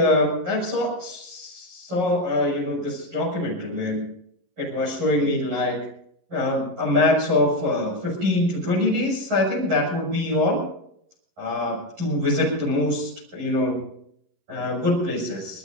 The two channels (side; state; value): left; late; 11 ms